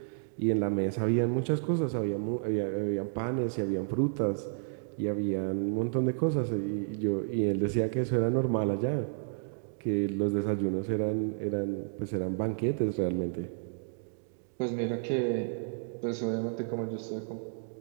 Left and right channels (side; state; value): left; silent; digital silence